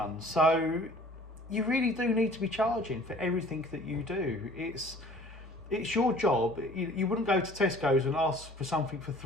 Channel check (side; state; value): both; normal; correlation 0.50